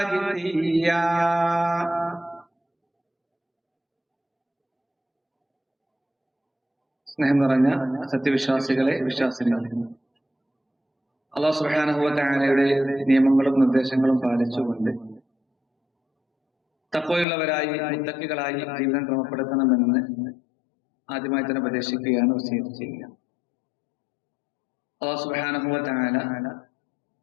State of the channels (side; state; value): right; drops out; at 17.2 s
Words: جثيا. സ്നേഹം നിറഞ്ഞ സത്യവിശ്വാസികളെ, വിശ്വാസികളെ, അല്ലാഹു സുബ്ഹാനഹു വ തആലയുടെ നിയമങ്ങളും നിർദ്ദേശങ്ങളും പാലിച്ചുകൊണ്ട് തഖ്വയുള്ളവരായി മുത്തഖികളായി ജീവിതം ക്രമപ്പെടുത്തണമെന്ന് ആദ്യമായി തന്നെ ഉപദേശിക്കുകയാണ്, വസിയത്ത് ചെയ്യുക. അല്ലാഹു സുബ്ഹാനഹു വ തആല